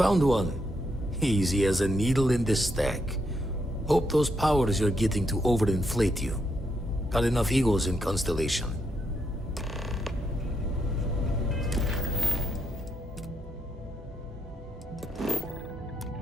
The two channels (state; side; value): normal; both; correlation 0.79